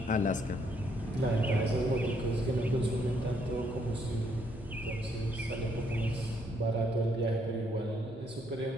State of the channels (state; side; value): normal; both; correlation 0.71